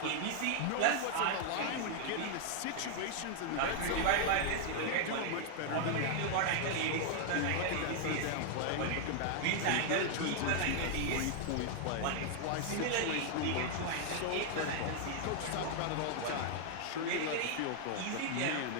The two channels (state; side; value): different; both; correlation 0.00